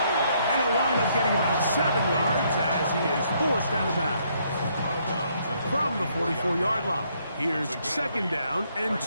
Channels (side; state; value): both; inverted; correlation -0.70